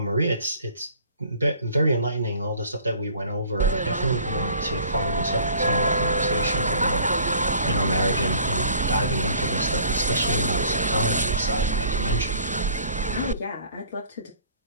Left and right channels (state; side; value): inverted; both; correlation -0.52